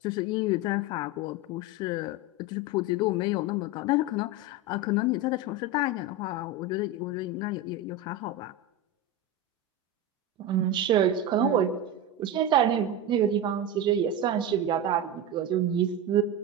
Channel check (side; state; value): both; normal; correlation 0.18